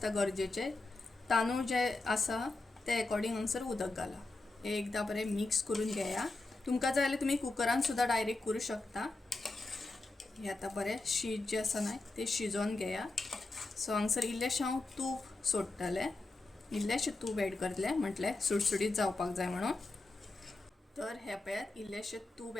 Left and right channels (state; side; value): quieter; right; 3.2 dB